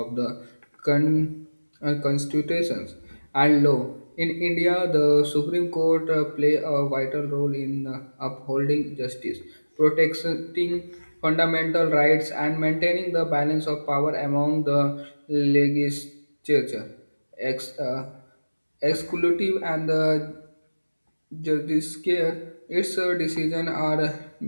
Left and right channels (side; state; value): both; inverted; correlation -1.00